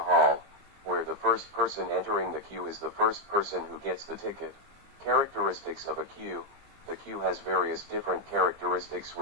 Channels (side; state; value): left; late; 20 ms